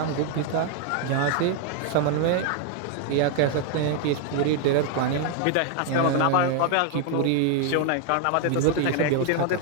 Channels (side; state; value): both; different; correlation 0.00